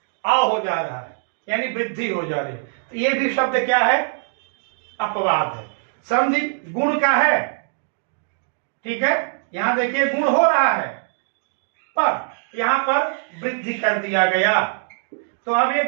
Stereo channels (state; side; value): silent; left; digital silence